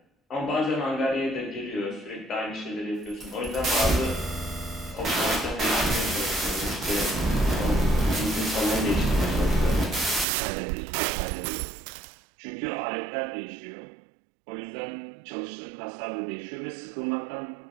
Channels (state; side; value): drops out; left; at 10.2 s